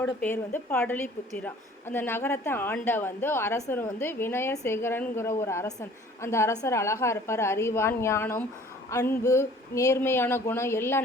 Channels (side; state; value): both; normal; correlation 0.51